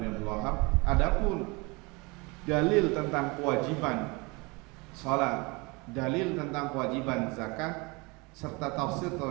bin Abdul Wahab. Adapun dalil tentang kewajiban salat, dalil tentang kewajiban zakat serta tafsir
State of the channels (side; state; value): left; quieter; 27.1 dB